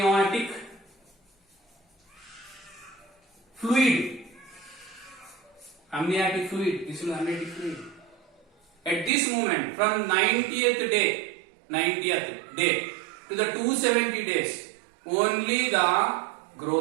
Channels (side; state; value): left; drops out; at 9.1 s